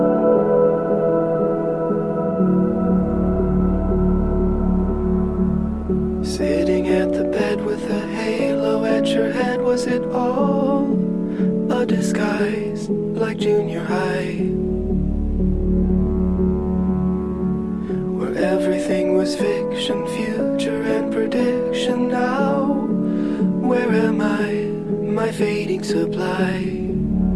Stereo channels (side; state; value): both; identical; correlation 1.00